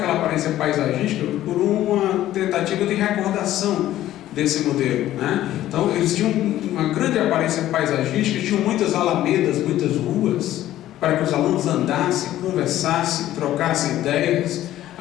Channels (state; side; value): quieter; right; 13.6 dB